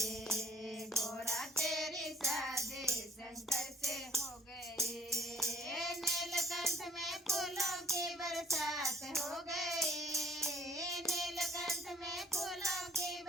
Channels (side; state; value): both; normal; correlation 0.58